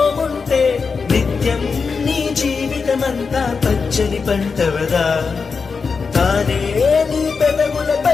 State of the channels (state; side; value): quieter; right; 5.1 dB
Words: ఉంటే నిత్యం నీ జీవితమంతా పచ్చని పంటవదా. తానే నీ